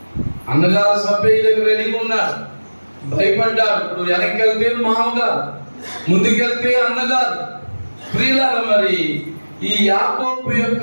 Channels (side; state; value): both; inverted; correlation -1.00